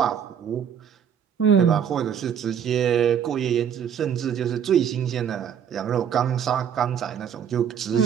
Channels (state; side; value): quieter; left; 8.2 dB